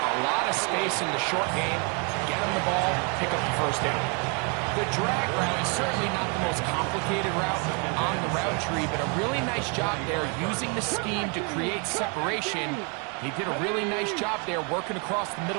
lot of space in the short game, get them the ball, pick up the first down. The drag route is certainly not the most complicated route on the route tree, but a really nice job there using the scheme to create separation. He did a really nice job there working across the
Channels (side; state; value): left; quieter; 34.6 dB